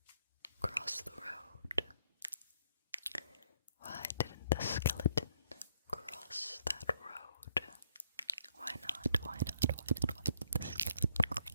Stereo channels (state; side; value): inverted; both; correlation -0.70